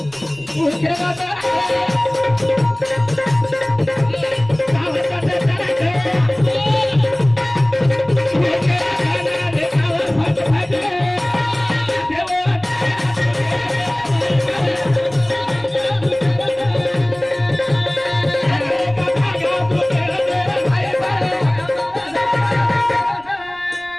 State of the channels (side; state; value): right; noise; rumble, 25 dB below the sound